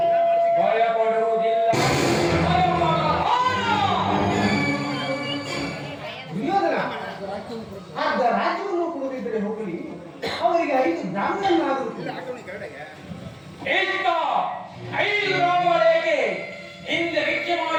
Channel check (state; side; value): identical; both; correlation 1.00